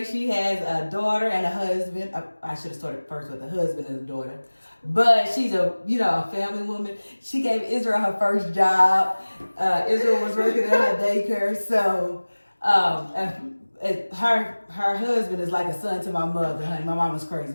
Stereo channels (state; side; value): inverted; both; correlation -1.00